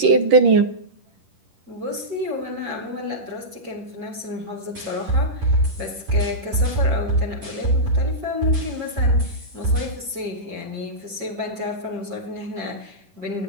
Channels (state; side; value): late; left; 10 ms